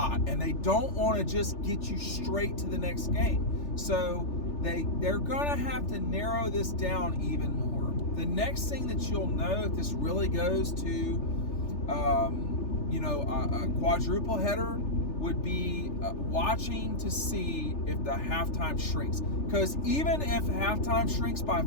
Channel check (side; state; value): right; late; 3.4 ms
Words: and they don't want to just get you straight to the next game. So they're gonna have to narrow this down even more. The next thing that you'll know, if this really goes to a quadruple header, would be watching to see if the halftime shrinks. Because even if halftime shrinks by